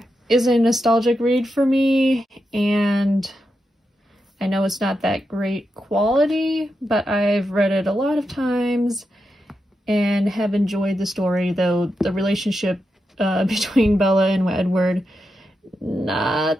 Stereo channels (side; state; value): both; normal; correlation 0.87